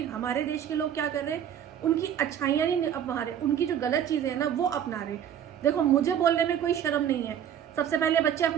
हमारे देश के लोग क्या कर रहे हैं? उनकी अच्छाइयां नहीं अपना रहे, उनकी जो गलत चीजें हैं ना वो अपना रहे। देखो, मुझे बोलने में कोई शर्म नहीं है। सबसे पहले बच्चे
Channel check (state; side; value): quieter; left; 9.4 dB